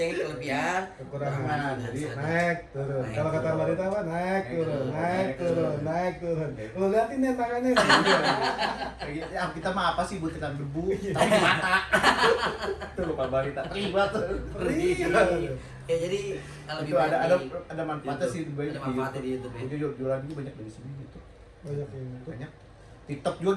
kelebihan. Kekurangan. Jadi Naik turun. Naik, Kalau kata turun. Marita apa? Naik turun, turun, naik naik turun, turun. naik turun. Lu liatin nih tangannya. ya, kita mah apa sih butiran debu tapi di mata. Tuh lupa balita. Terlibat. Ya jadi lebih Itu ada banyak di ada manfaatnya sih YouTube. Ada manfaatnya di YouTube ya. Jadi jualan juga banyak dari sini gitu. Banyak yang itu. Banyak. TikTok juga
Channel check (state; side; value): identical; both; correlation 1.00